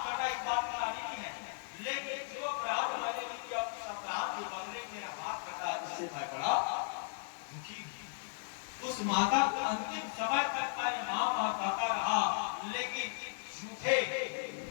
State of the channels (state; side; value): silent; right; digital silence